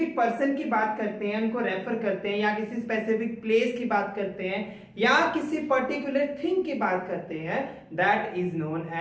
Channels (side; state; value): both; identical; correlation 1.00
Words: पर्सन की बात करते हैं, उनको रेफर करते हैं, या किसी स्पेसिफिक प्लेस की बात करते हैं, या किसी पर्टिकुलर थिंग की बात करते हैं, that is known